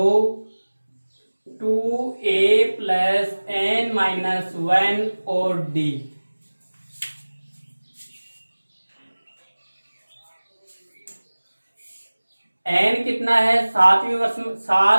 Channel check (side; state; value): both; inverted; correlation -1.00